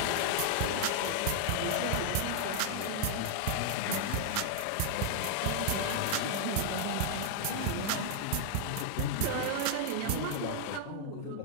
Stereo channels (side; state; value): both; different; correlation -0.01